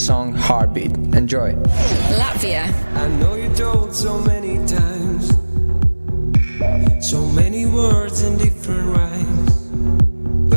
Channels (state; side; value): inverted; both; correlation -1.00